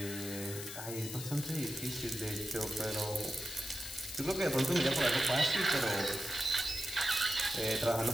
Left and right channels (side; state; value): left; noise; hiss, 9 dB below the sound